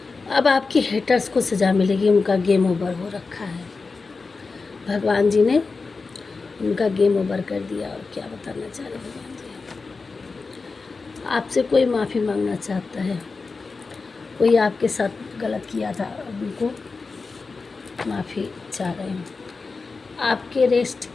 अब आपके हेटर्स को सज़ा मिलेगी, उनका गेम ओवर हो रखा है। भगवान जी ने उनका गेम ओवर कर दिया। और क्या बताना चाह रहे भगवान जी, आपसे कोई माफ़ी मांगना चाहता है, कोई आपके साथ गलत किया था, अब उनको माफ़ी चाह रहे हैं।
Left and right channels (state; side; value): quieter; right; 4.2 dB